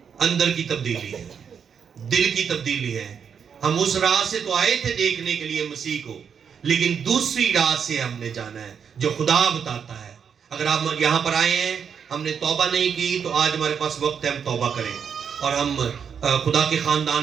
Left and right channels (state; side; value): quieter; left; 7.1 dB